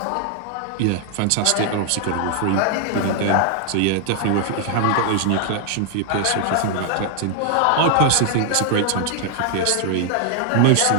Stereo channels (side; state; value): both; different; correlation 0.00